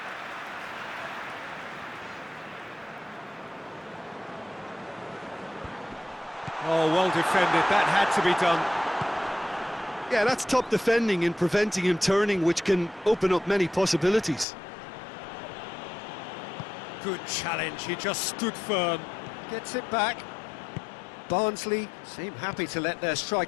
Oh, well defended. That had to be done. Yeah, that's top defending and preventing him turning, which can open up many possibilities. Good challenge, he just stood firm. Gets it back. Barnsley seem happy to let their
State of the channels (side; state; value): right; drops out; at 14.5 s